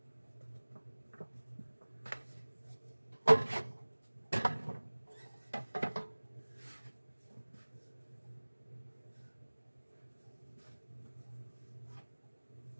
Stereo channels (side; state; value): both; inverted; correlation -1.00